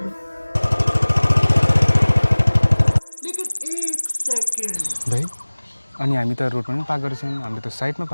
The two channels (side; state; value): both; inverted; correlation -1.00